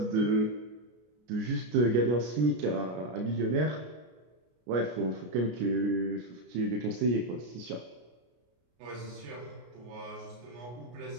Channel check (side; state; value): left; late; 33 ms